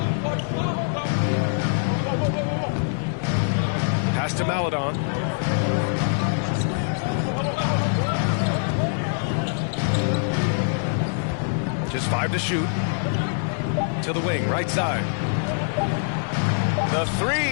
Pass to Maledon. Just 5 to shoot. To the wing, right side. The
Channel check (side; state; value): right; silent; digital silence